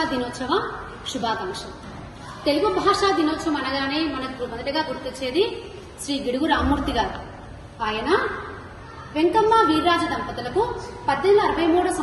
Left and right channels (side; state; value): both; identical; correlation 1.00